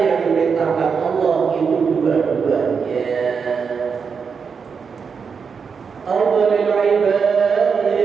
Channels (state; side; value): quieter; left; 5.9 dB